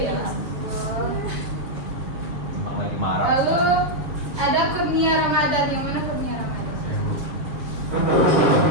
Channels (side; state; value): left; late; 7.0 ms